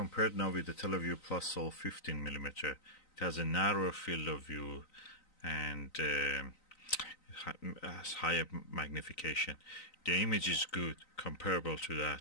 now with the teleview Plusol 15mm. It has a narrower field of view and has higher magnification. The image is good, comparable to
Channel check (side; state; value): right; late; 3.9 ms